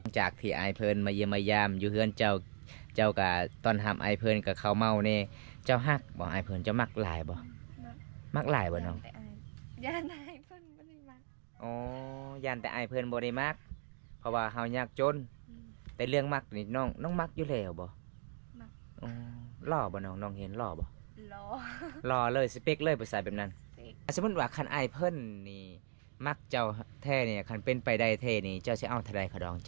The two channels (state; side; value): silent; left; digital silence